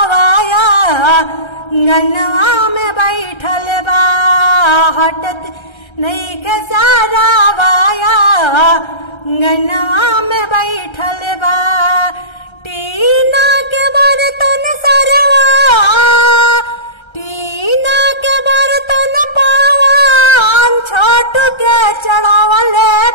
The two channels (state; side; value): late; right; 1.3 ms